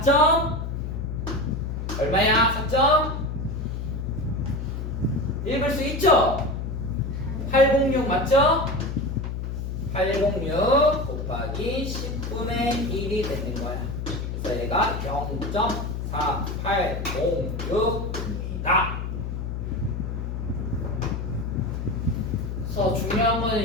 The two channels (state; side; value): noise; left; hum, 4 dB below the sound